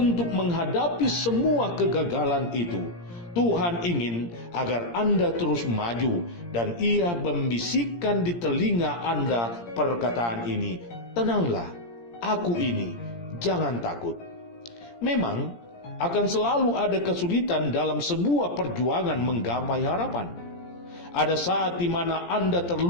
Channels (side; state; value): right; late; 17 ms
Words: menghadapi semua kegagalan itu. Tuhan ingin agar Anda terus maju dan Ia membisikkan di telinga Anda perkataan ini, tenanglah, aku ini, jangan takut. Memang Akan selalu ada kesulitan dalam sebuah perjuangan menggapai harapan. Ada saat di mana Anda